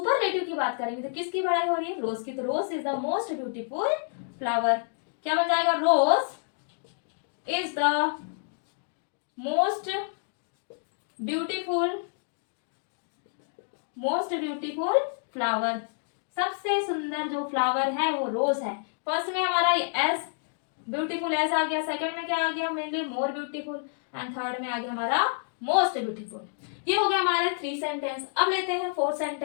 की बात करेंगे तो किसकी बढ़ाई हो रही है, रोज की। तो rose is the most beautiful flower. क्या बन जाएगा, rose is the most beautiful flower. सबसे सुंदर जो फ्लावर है वो रोज है। फर्स्ट में हमारा एस ब्यूटीफुल एस आ गया, सेकंड में क्या आ गया, mainly more beautiful, and third में आ गया हमारा मोस्ट ब्यूटीफुल। ये हो गया हमारे 3 सेंटेंस। अब लेते हैं 4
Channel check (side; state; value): right; silent; digital silence